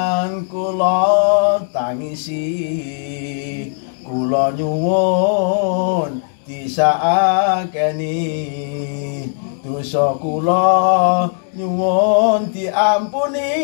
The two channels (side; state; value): right; silent; digital silence